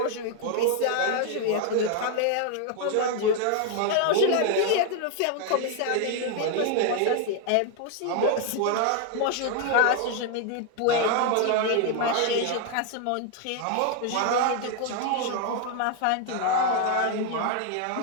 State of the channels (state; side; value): different; both; correlation 0.01